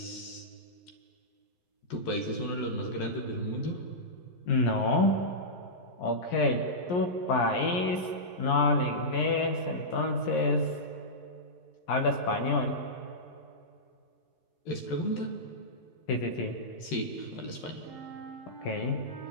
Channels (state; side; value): late; right; 11 ms